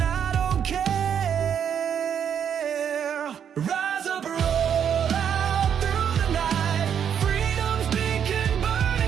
don't care. Rise up, roll out through the night. Freedom's beacon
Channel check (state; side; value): quieter; left; 8.3 dB